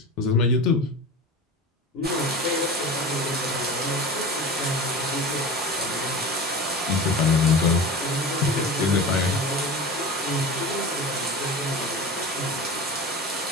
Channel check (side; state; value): both; normal; correlation 0.32